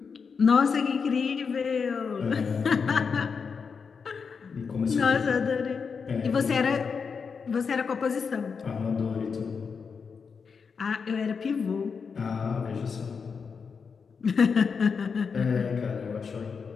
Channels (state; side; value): quieter; right; 5.7 dB